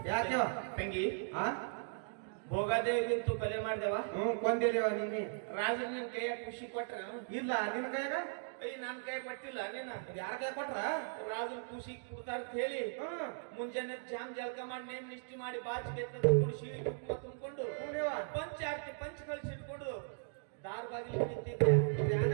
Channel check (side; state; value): left; silent; digital silence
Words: ಯಾಕೆವ ತಂಗಿ ಹಾ ಭೋಗಾದೇವಿಗಂತೂ ಕೊಲೆ ಮಾಡ್ದೇವ. ಕೊಂದಿದೇವ ನೀನಿ ರಾಜನ ನಿನ್ ಕೈಯಾಗ ಖುಷಿ ಕೊಟ್ರ? ಇಲ್ಲ ನಿನ್ನ ಕೈಯಾಗ ನನ್ ಕೈ ಕೊಟ್ಟಿಲ್ಲ ನೀನ. ಯಾರ ಕೈ ಕೊಟ್ರ? ರಾಜನ ಖುಷಿ ಕೊಡ್ತಾರ ಅಂತ ಹೇಳಿ ಮುಂಜಾನೆ ಜಾಮ್ ಜಳಕ ಮಾಡಿ ನೇಮ್ ನಿಷ್ಠಿ ಮಾಡಿ ಬಾಚಿಗೆ ತಗೊಂಡು ಶಿವಿ ಕುಂಕುಮ ತುಂಬಿಕೊಂಡು ಪಂಚ ಆರ್ತಿ ಪಂಚ ಕಳಿಸಿಟ್ಕೊಂಡು ದಾರ್ ಬಾಗಿಲು ನಿಂತಿದ್ದೆ.